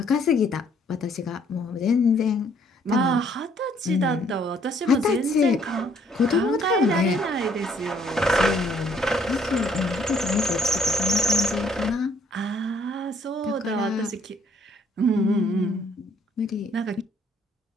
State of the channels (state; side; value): normal; both; correlation 0.64